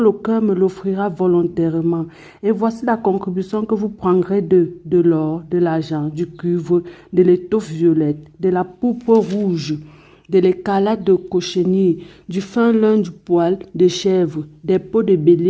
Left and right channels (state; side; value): identical; both; correlation 1.00